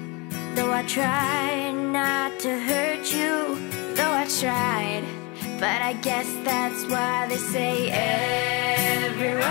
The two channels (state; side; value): quieter; right; 28.3 dB